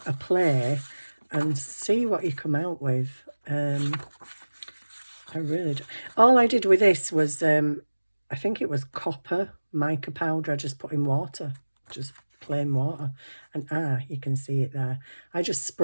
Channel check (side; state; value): both; inverted; correlation -1.00